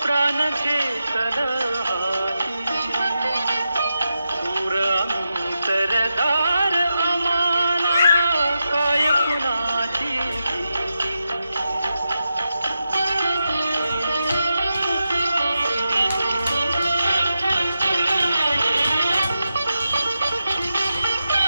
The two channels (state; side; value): inverted; both; correlation -0.88